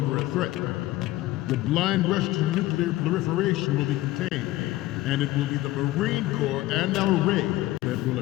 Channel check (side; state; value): right; quieter; 17.0 dB